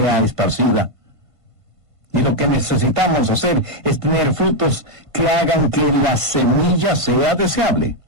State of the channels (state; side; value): late; left; 1.5 ms